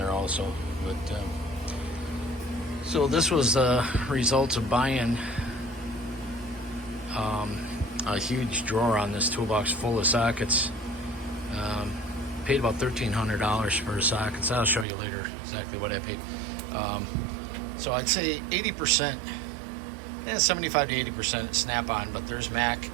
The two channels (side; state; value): left; drops out; at 14.9 s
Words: also. But so this was the results of buying a huge drawer on this toolbox full of sockets. Paid about $1,300 for sockets. I'll show you later exactly what I paid. So I'd say 80%. 75 to 80% Snap-on, but there's Mac